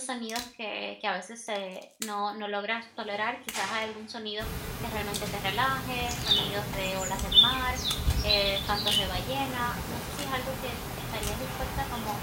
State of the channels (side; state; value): both; identical; correlation 1.00